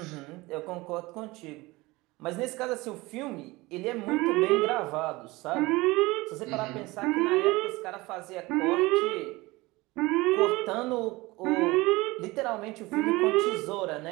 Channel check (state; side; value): quieter; left; 21.6 dB